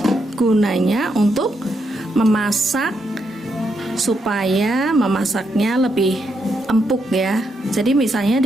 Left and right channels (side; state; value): both; normal; correlation 0.80